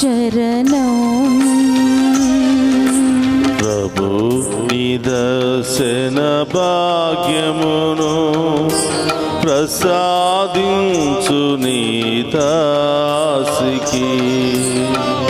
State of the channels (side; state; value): both; identical; correlation 1.00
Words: ప్రభు నీ దర్శన భాగ్యమును ప్రసాదించు నీ దాసికి.